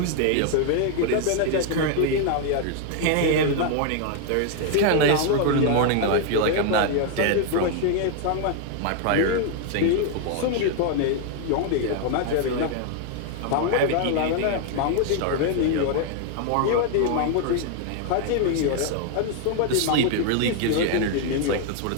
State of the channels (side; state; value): both; different; correlation 0.00